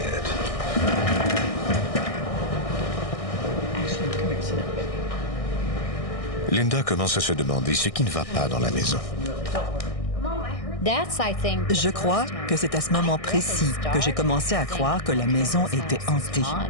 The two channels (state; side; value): late; right; 1.6 ms